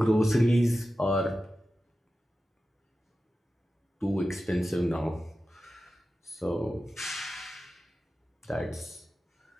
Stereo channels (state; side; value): normal; both; correlation 0.93